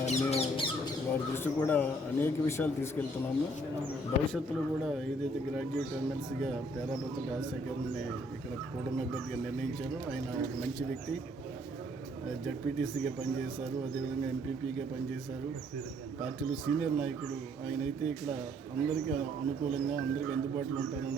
వారి దృష్టి కూడా అనేక విషయాలు తీసుకెళ్తున్నాము. భవిష్యత్తులో కూడా ఏదైతే గ్రాడ్యుయేట్ ఎమ్మెల్సీగా పేరాబత్తుల రాజశేఖర్ని ఇక్కడ కూటమి అభ్యర్థిగా నిర్ణయించారో ఆయన ఒక మంచి వ్యక్తి. జడ్పీటీసీగా పనిచేశారు, అదేవిధంగా ఎంపీపీగా పనిచేశారు, పార్టీలో సీనియర్ నాయకుడు. ఆయన అయితే ఇక్కడ అందరికీ అనుకూలంగా అందరికీ అందుబాటులో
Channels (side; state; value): both; normal; correlation 0.64